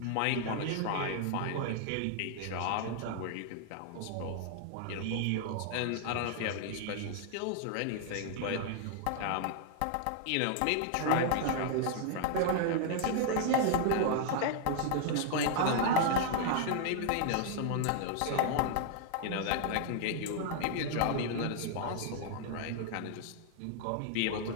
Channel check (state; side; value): different; both; correlation -0.01